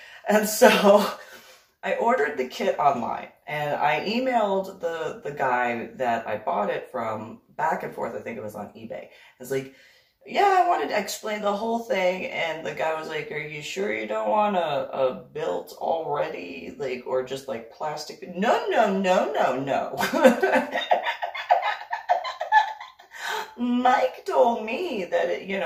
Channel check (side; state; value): both; identical; correlation 1.00